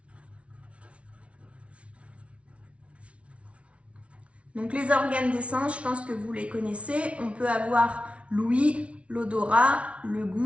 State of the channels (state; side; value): late; left; 0.062 ms